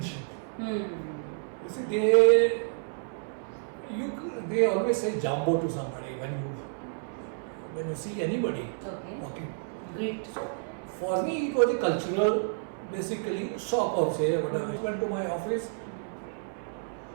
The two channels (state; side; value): silent; left; 58 dB below the other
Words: You see, they always say jambo to somebody when you see anybody walking. Great. For me, it was a cultural, basically shock or say whatever. I went to my office.